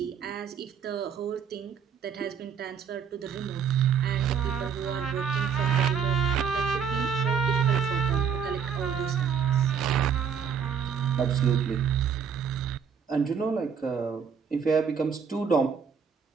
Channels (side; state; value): left; quieter; 7.1 dB